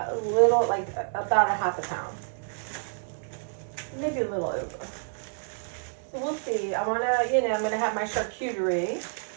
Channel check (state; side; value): silent; left; digital silence